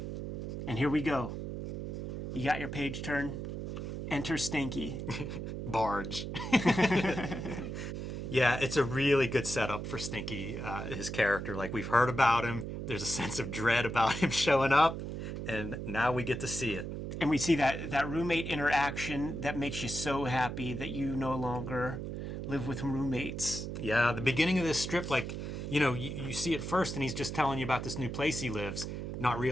And here we go. You got your page turn. Enter Stinky. Barge. Yeah, it's a really good setup for Stinky, his character. Like, we've heard about him. There's a sense of dread about him showing up. And now we get to see it. And we see that roommate interaction that makes you so happy that you no longer live with roommates. Yeah, the beginning of this strip, like, you see it first and he's just telling you about this new place he lives, not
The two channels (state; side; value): noise; right; hum, 5 dB below the sound